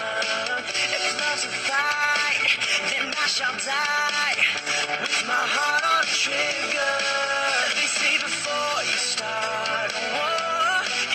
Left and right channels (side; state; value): both; identical; correlation 1.00